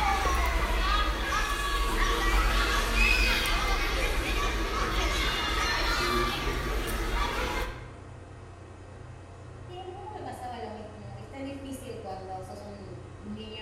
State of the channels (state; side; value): identical; both; correlation 1.00